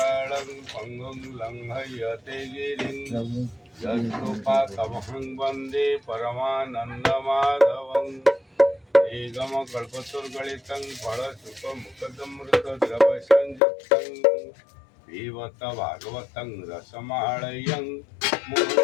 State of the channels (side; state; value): right; drops out; at 13.6 s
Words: पङ्गुं लङ्घयते गिरिं यत्कृपातमहं वन्दे परमानन्दमाधवं निगमकल्पतरुगलितं फलसुखमुखदमृतद्रवसंयुक्तं पिबत भागवतं रसमालयं